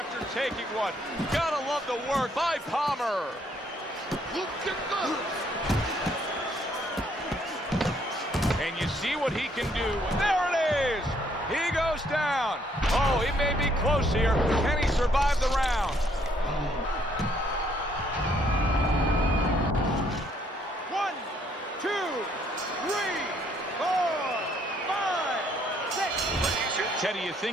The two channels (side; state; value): both; normal; correlation 0.67